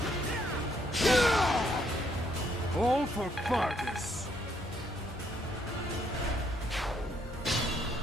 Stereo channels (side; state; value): both; normal; correlation 0.71